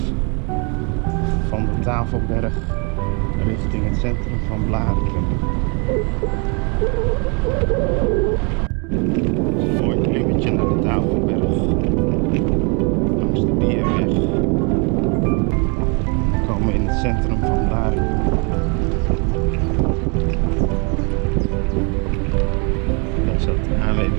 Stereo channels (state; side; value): quieter; left; 34.1 dB